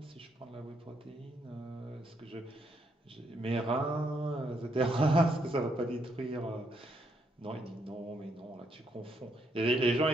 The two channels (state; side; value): normal; both; correlation 0.75